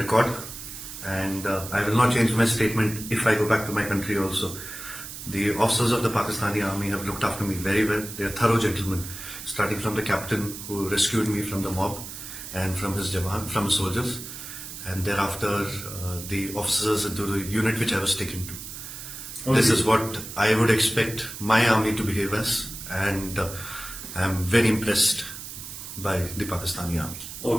And I will not change my statement if I go back to my country also. The officers of the Pakistani army have looked after me very well. They are thorough gentlemen, starting from the captain who rescued me from the mob and from his jawan, from his soldiers, and thereafter the officers into the unit which I was taken to. Okay. This is what I would expect my army to behave as, and I am very impressed by the Pakistani army.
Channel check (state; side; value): noise; right; hiss, 10 dB below the sound